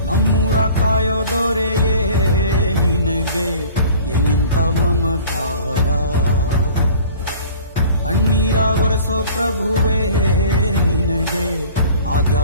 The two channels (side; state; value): both; inverted; correlation -0.47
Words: ನಮ್ಮೂರ ಕಾಯೋ ದೊರೆಯೇ ನಿನಗೆ ಎಲ್ಲಿಂತ ಮಮಕಾರ, ಕಣ್ಣೀರ ಒರೆಸೋ ಪ್ರಭುವೇ ನಿನಗೆ